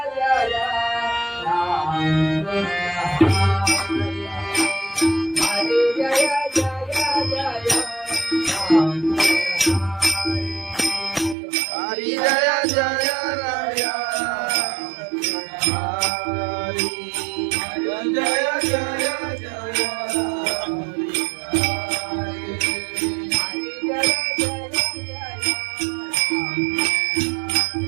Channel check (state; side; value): drops out; left; at 11.4 s